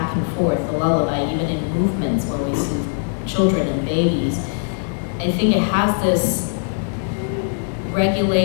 and forth, the lullaby, even in movements when we soothe children and babies. I think it has this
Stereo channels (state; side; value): silent; right; digital silence